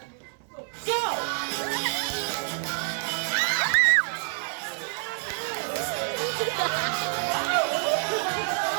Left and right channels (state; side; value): silent; left; 60 dB below the other